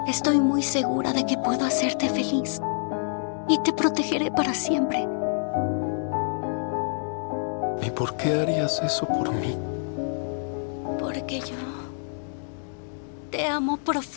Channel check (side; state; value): right; silent; digital silence